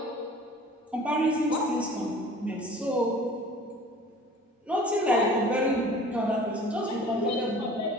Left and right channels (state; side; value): normal; both; correlation 0.46